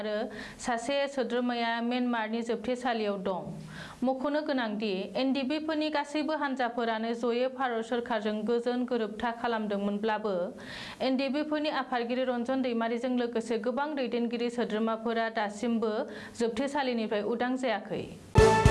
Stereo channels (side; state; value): both; identical; correlation 1.00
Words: सासे सोद्रोमाया म्यानमारनि जोबथेसालियाव दं मख'नो गोनांदि एनडिपिफोरनि गासैबो हान्जाफोरानो जयै भारत सोरखारजों गोजोन गोरोबथा खालामदोंमोनब्लाबो एनडिपिफोरनि आफादगिरि रन्जन दैमारिजों लोगोसे गोबां दैदेनगिरि सोद्रोमाफोरा दासिमबो जोबथेसालिनिफ्राय उदां जायाखै